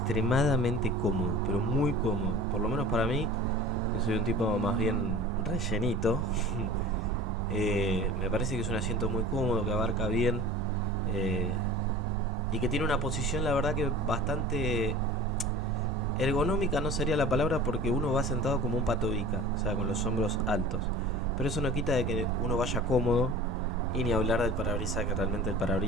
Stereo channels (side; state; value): both; normal; correlation 0.40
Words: cómodo, pero muy cómodo. Por lo menos para mí, yo soy un tipo más bien rellenito. Me parece que es un asiento muy cómodo, que abarca bien. Y que tiene una posición, la verdad que bastante ergonómica, no sería la palabra, porque uno va sentado como un patobica, o sea, con los hombros altos. Pero eso no quita de que uno vaya cómodo, y ni hablar del parabrisas, que realmente el